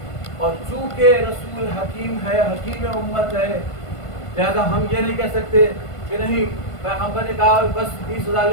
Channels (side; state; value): right; late; 1.5 ms